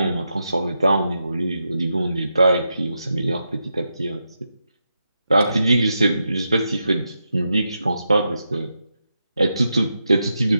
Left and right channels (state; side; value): inverted; both; correlation -0.86